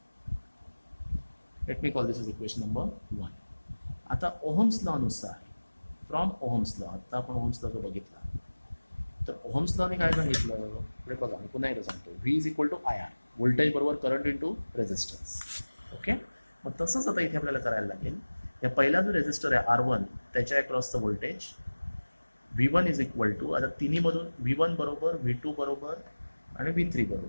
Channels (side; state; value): both; inverted; correlation -1.00